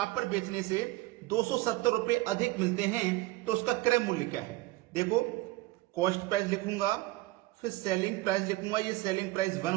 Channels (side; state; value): left; quieter; 19.3 dB